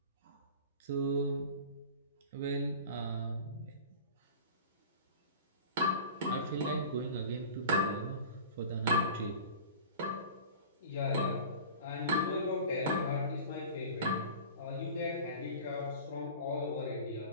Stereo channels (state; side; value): inverted; both; correlation -0.38